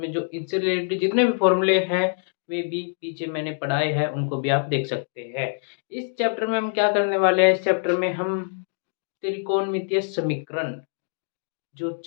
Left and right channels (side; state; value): right; silent; digital silence